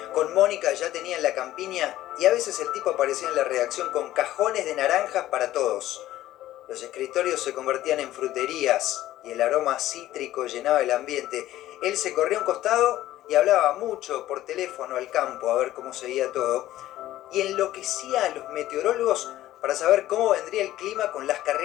Con Mónica ya tenían la campiña y a veces el tipo aparecía en la redacción con cajones de naranjas para todos. Los escritorios se convertían en fruterías y el aroma cítrico llenaba el ambiente. Él se corría a un costado y hablaba mucho por teléfono al campo a ver cómo seguía todo y enloquecía a los meteorólogos para saber cómo vendría el clima con las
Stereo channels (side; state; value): right; quieter; 14.4 dB